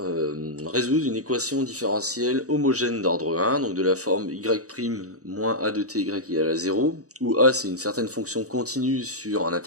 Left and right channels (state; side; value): late; left; 0.66 ms